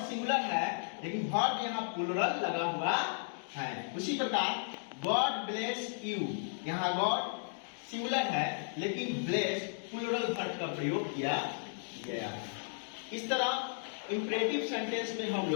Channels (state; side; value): silent; right; digital silence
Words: सिंगुलर है लेकिन वर्ब यहाँ प्लूरल लगा हुआ है। उसी प्रकार गॉड ब्लेस यू, यहाँ गॉड सिंगुलर है लेकिन ब्लेस प्लूरल वर्ब का प्रयोग किया गया है। इस तरह इंपरेटिव सेंटेंस में हम